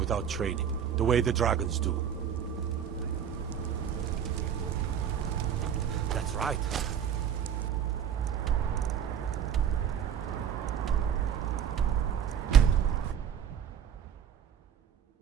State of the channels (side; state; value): left; quieter; 8.5 dB